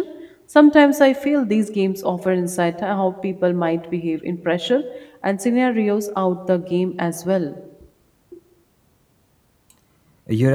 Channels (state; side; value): identical; both; correlation 1.00